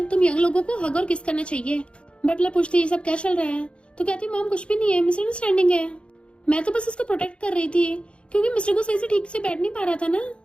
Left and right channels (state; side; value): late; right; 0.058 ms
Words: तुम यंग लोगों को हग और किस करना चाहिए। बटलर पूछती है ये सब क्या चल रहा है? तो कहती मॉम कुछ भी नहीं है, मिसअंडरस्टैंडिंग है, मैं तो बस इसको प्रोटेक्ट कर रही थी क्योंकि मिस्टर को सही से ठीक से बैठ नहीं पा रहा था ना।